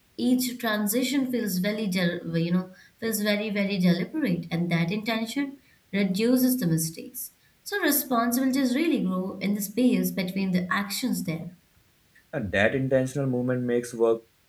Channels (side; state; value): both; identical; correlation 1.00